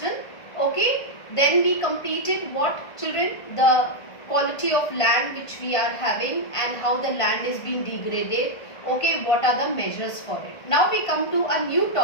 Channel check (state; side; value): late; right; 1.5 ms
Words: Okay, then we completed what, children? The quality of land which we are having and how the land is being degraded. Okay, what are the measures for it? Now we come to a new